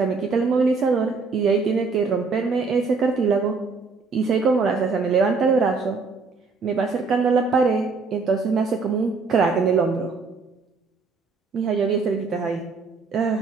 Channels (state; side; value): quieter; left; 4.4 dB